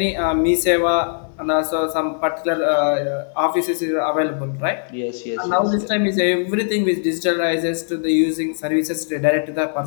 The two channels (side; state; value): right; silent; digital silence